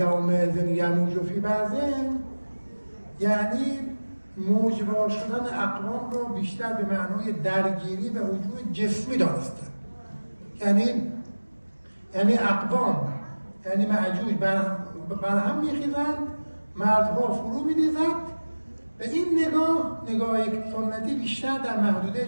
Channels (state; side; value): inverted; both; correlation -1.00